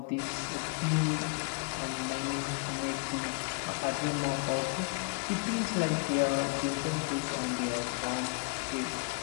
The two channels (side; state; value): right; quieter; 37.1 dB